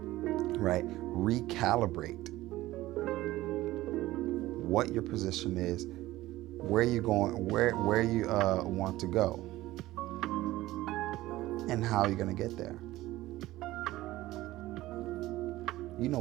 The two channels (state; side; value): quieter; left; 16.8 dB